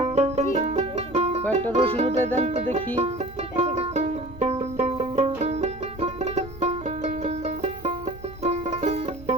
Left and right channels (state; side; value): noise; right; hum, 18 dB below the sound